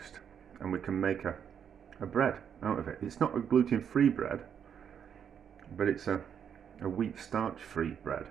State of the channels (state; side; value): quieter; left; 8.1 dB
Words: and we can make a bread out of it. It's not a gluten free bread, but it's a wheat starch free bread.